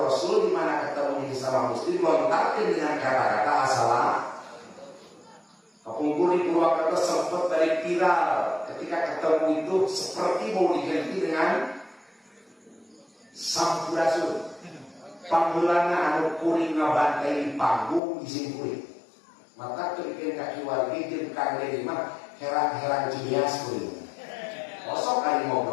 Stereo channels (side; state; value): right; drops out; at 18.0 s